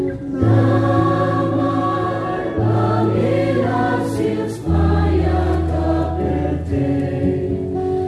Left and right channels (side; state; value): both; identical; correlation 1.00